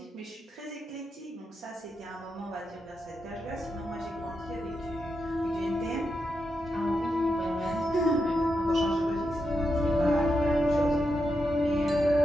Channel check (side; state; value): both; normal; correlation 0.85